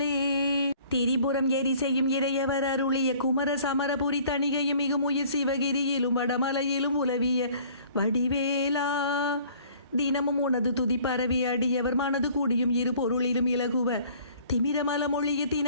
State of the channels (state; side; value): inverted; both; correlation -0.53